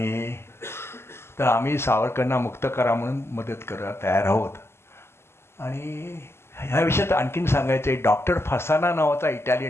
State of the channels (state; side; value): late; right; 0.12 ms